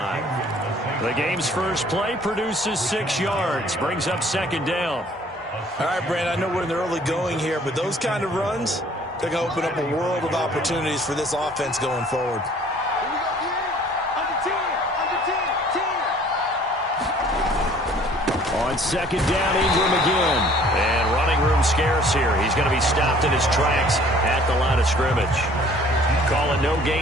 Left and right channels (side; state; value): both; normal; correlation 0.55